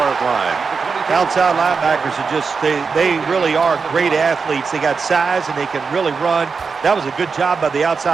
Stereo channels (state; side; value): quieter; left; 5.1 dB